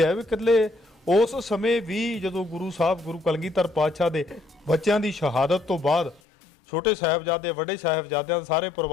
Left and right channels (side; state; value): right; drops out; at 6.2 s